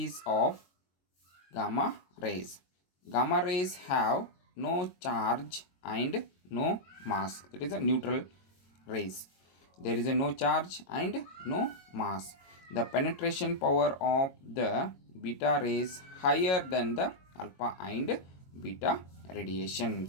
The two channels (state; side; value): late; right; 22 ms